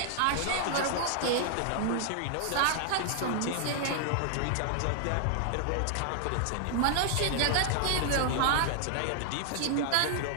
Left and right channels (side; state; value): both; different; correlation -0.01